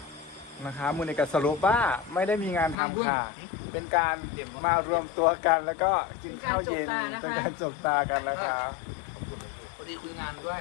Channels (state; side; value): drops out; right; at 2.8 s